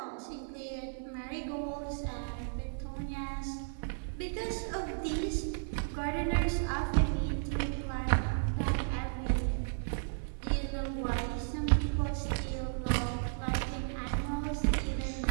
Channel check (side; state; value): left; silent; digital silence